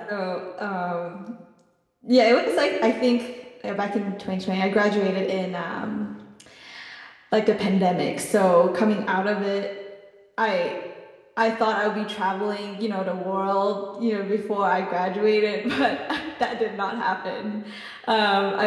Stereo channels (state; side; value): identical; both; correlation 1.00